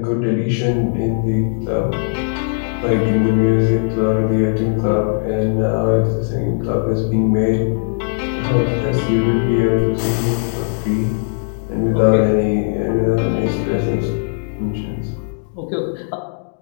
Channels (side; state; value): right; silent; digital silence